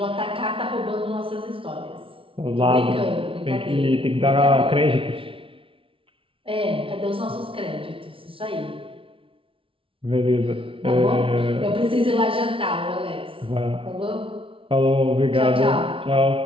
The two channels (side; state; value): left; late; 0.26 ms